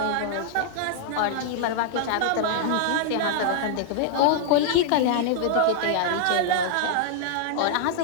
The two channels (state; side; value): different; both; correlation -0.01